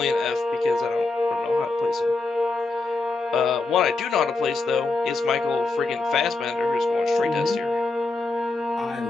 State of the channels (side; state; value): right; quieter; 3.5 dB